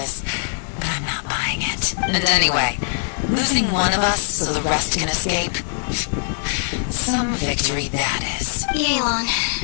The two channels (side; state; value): right; silent; 65 dB below the other